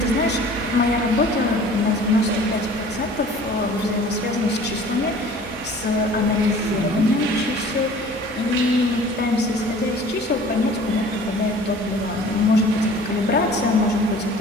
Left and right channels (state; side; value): normal; both; correlation 0.47